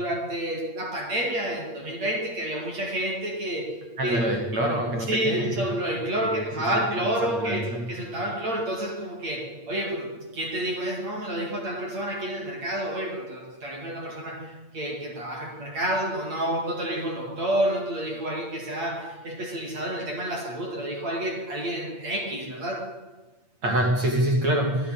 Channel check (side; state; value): left; late; 8.6 ms